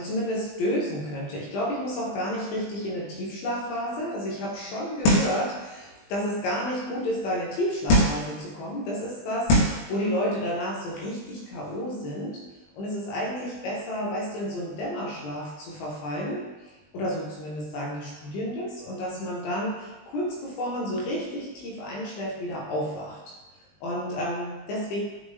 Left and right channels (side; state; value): right; late; 20 ms